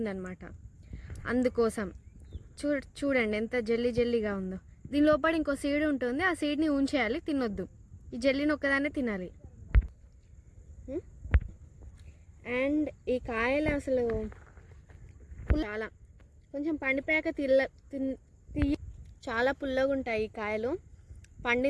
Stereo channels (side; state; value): both; identical; correlation 1.00